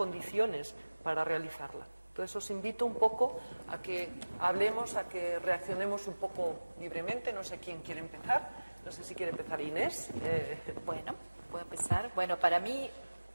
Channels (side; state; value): both; inverted; correlation -1.00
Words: para realizarla. Entonces os invito un poco a que hablemos, a que reaccionemos un poco libremente, no sé quién quiere empezar. No sé si quiere empezar Inés. Bueno, puedo empezar. Bueno, para mí